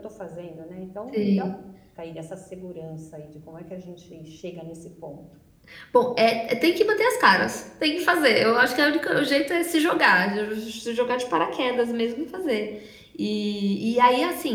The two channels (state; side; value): identical; both; correlation 1.00